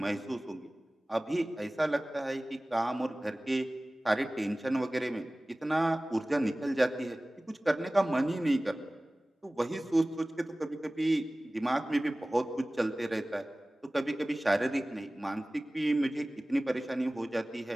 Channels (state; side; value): normal; both; correlation 0.98